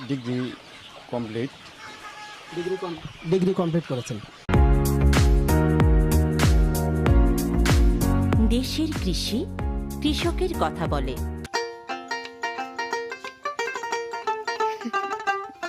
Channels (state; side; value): identical; both; correlation 1.00